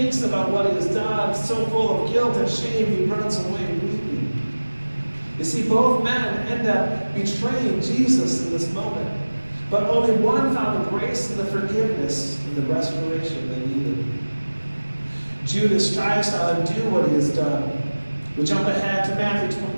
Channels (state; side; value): inverted; both; correlation -1.00